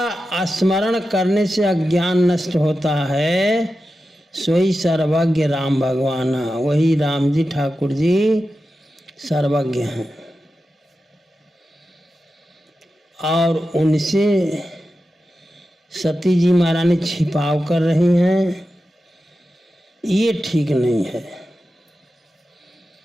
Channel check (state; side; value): normal; both; correlation 0.91